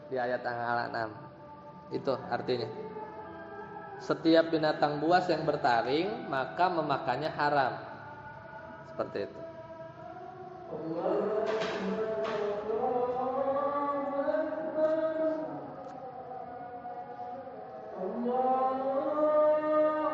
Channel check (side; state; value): both; identical; correlation 1.00